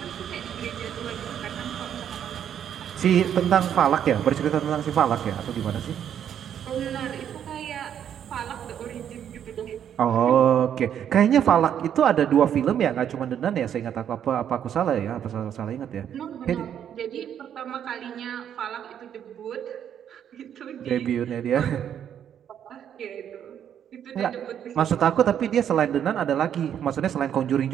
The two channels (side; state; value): left; quieter; 9.3 dB